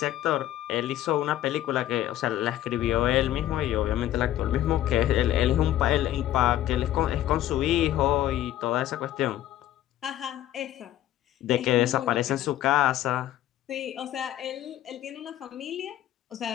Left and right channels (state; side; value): quieter; right; 13.2 dB